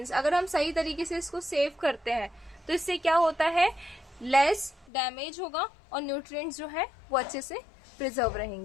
अगर हम सही तरीके से इसको सेव करते हैं तो इससे क्या होता है, लेस डैमेज होगा और न्यूट्रिएंट्स जो है वो अच्छे से प्रिजर्व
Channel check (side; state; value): right; drops out; at 4.9 s